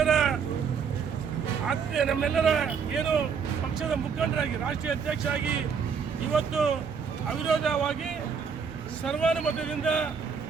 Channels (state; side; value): quieter; left; 6.3 dB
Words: ಏನು ಪಕ್ಷದ ಮುಖಂಡರಾಗಿ ರಾಷ್ಟ್ರೀಯ ಅಧ್ಯಕ್ಷರಾಗಿ ಇವತ್ತು ಅವಿರೋಧವಾಗಿ ಸರ್ವಾನುಮತದಿಂದ